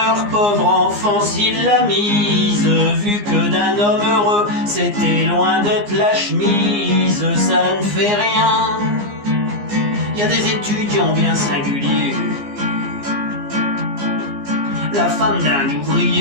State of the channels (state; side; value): late; left; 15 ms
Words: pauvre enfant s'il l'a mise, vu que d'un homme heureux c'était loin d'être la chemise. Ça ne fait rien, y a des étudiants bien singuliers. La femme d'un